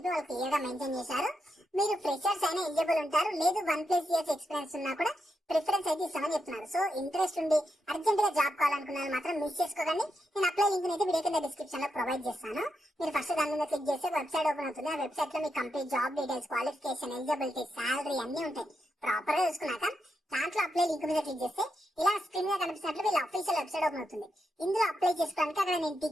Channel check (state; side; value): normal; both; correlation 0.84